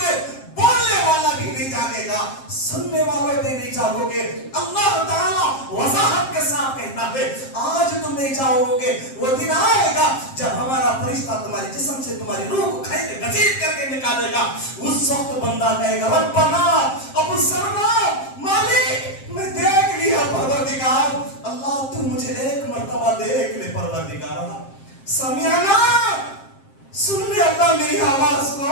بولنے والا بھی نہیں جاگے گا، سننے والے بھی نہیں جاگو گے. اللہ تعالیٰ وضاحت کے ساتھ کہتا ہے آج تم نہیں جاؤ گے. وہ دن آئے گا جب ہمارا فرشتہ تمہارے جسم سے تمہاری روح کو کھینچ کے گھسیٹ کر کے نکالے گا. اس وقت بندہ کہے گا ربنا ابصرنا، مالک میں دیکھ لیا پروردگار. اللہ تو مجھے ایک مرتبہ دیکھ لے پروردگار. سمعنا، سن لے اللہ میری آواز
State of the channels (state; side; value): late; right; 7.5 ms